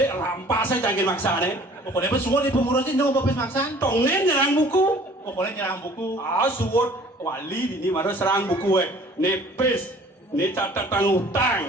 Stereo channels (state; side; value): normal; both; correlation 0.51